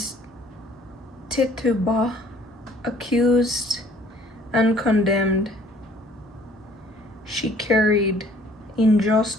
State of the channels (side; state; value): both; normal; correlation 0.57